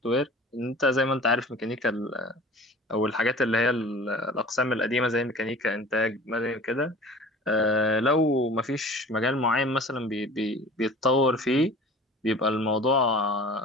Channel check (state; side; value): normal; both; correlation 0.43